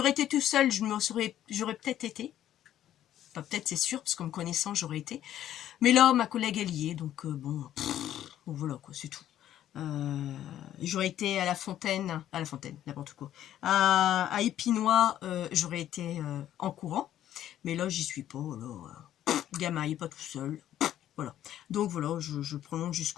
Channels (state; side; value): quieter; right; 11.8 dB